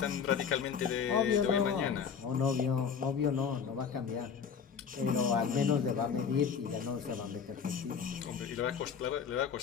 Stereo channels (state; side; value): quieter; right; 6.8 dB